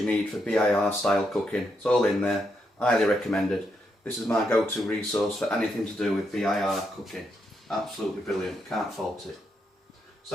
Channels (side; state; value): both; normal; correlation 0.80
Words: need for BIR style cooking. It's all in there, highly recommended. This is my go-to resource for anything to do with BIR cooking. Absolutely brilliant, can't fault it.